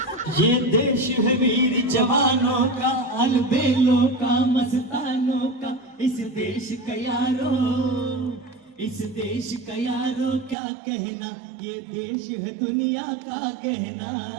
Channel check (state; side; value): drops out; left; at 10.6 s